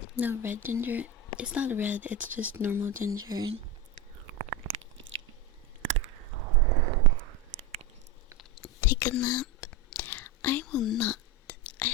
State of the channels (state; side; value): normal; both; correlation 0.16